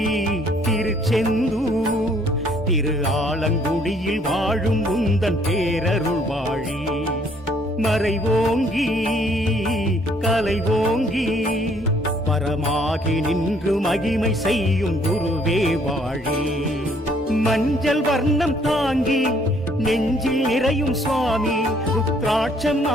திருச்செந்தூர் திரு ஆலங்குடியில் வாழும் உந்தன் பேரருள் வாழி மறைவோங்கி கலைவோங்கி பரமாகி நின்று மகிமை செய்யும் குருவே வாழி மஞ்சள் வர்ணம் தாங்கி நெஞ்சில் நிறையும் சுவாமி ருத்ராட்சம்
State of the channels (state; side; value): normal; both; correlation 0.63